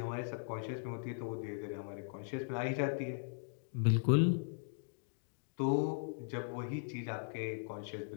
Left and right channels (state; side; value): silent; right; digital silence